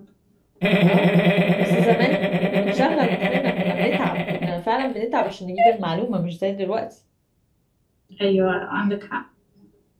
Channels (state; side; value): identical; both; correlation 1.00